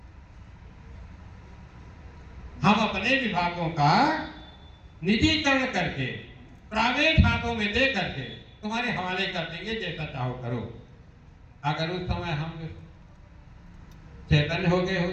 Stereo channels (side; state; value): both; identical; correlation 1.00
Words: हम अपने विभागों का निजीकरण करके, प्राइवेट हाथों में दे करके तुम्हारे हवाले कर देंगे, जैसा चाहो करो। अगर उस समय हम चैतन्य हो गए